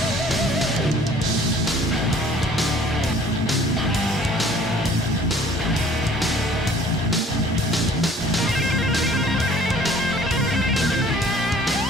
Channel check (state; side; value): normal; both; correlation 0.53